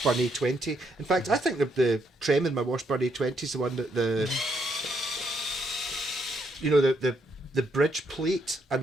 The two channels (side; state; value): both; normal; correlation 0.75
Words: A20. In fact, I think the trem in my Washburn A20 is the one that the bridge plate and